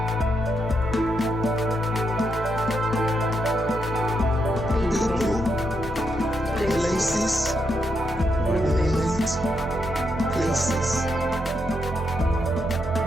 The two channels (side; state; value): both; normal; correlation 0.81